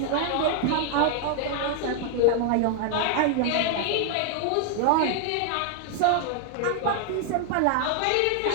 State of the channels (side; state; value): both; different; correlation 0.00